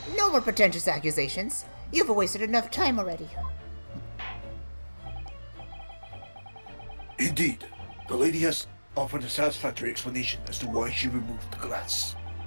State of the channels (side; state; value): both; inverted; correlation -1.00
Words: No more pretentious accusations. You've wasted enough time already. Indeed. The lady has offered a satisfactory explanation as to why she removed the glass.